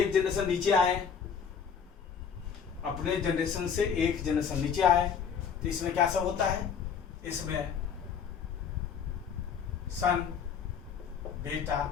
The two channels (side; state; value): right; quieter; 7.0 dB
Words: जनरेशन नीचे आए, अपने जनरेशन से एक जनरेशन नीचे आए, तो इसमें क्या सब होता है, इसमें सन, बेटा,